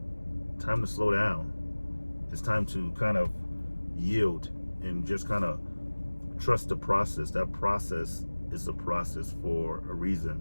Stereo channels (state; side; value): inverted; both; correlation -1.00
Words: time to slow down. It's time to kind of yield and just kind of trust the process. That process is a process for a